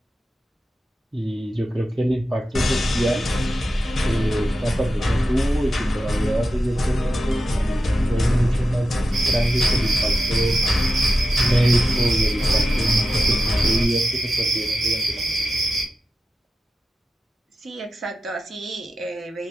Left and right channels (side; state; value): both; normal; correlation 0.90